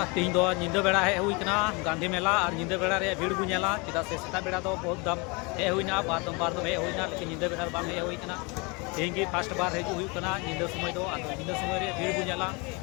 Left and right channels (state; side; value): quieter; right; 29.1 dB